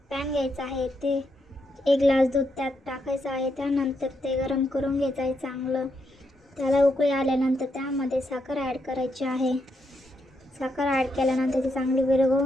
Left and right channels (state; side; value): normal; both; correlation 0.80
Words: पॅन घ्यायचा आहे, ते 1 ग्लास दूध त्यात टाकायचं आहे। त्यानंतर ते गरम करून घ्यायचं आहे चांगलं। त्याला उकळी आल्यानंतर त्यामध्ये साखर ॲड करायची आहे। साखर ॲड केल्यानंतर ती चांगली